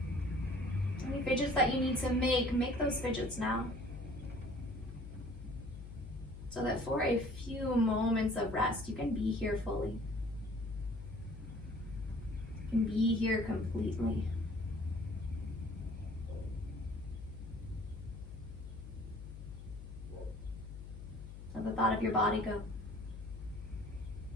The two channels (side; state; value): left; noise; hum, 11 dB below the sound